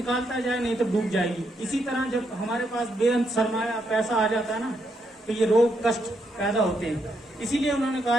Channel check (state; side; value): normal; both; correlation 0.78